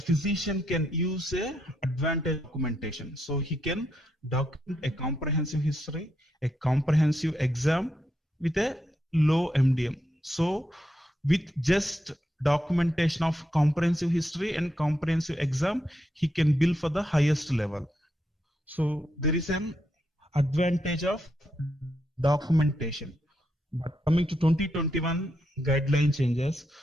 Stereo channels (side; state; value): both; normal; correlation 0.81